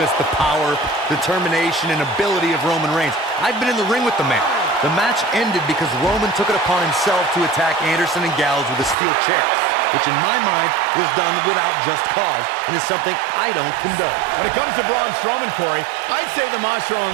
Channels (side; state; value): left; drops out; at 9.0 s